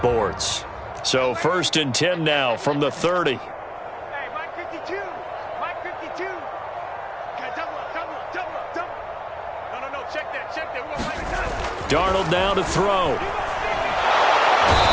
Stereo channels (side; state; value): both; identical; correlation 1.00